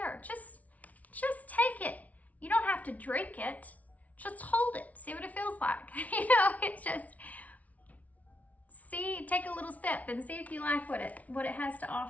Just take it. You don't have to drink it. Just hold it. See what it feels like. You know, it's just, take a little sip and see if you like what it has to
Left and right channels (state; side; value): late; right; 0.070 ms